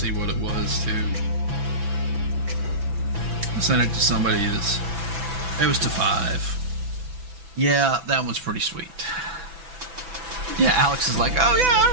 what it was too. I sent it to somebody. It was to 5. Yeah, that one's pretty sweet. Yeah, Alex is like, oh yeah, I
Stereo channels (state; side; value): late; left; 6.0 ms